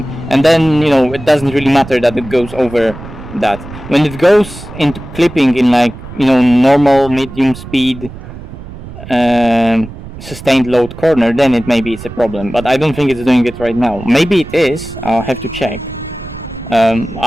and then, you know, it doesn't really matter that it goes over that. When it goes into clipping in like, you know, normal medium speed sustained load corner, then maybe it's a problem, but I don't think it's doing it right now. Maybe it is, I'll have to check.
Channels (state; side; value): noise; right; rumble, 14 dB below the sound